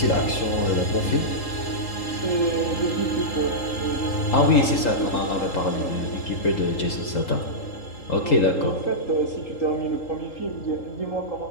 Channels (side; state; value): right; late; 3.8 ms